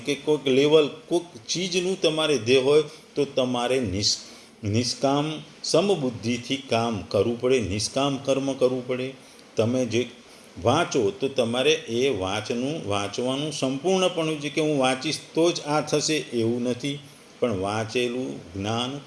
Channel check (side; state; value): both; identical; correlation 1.00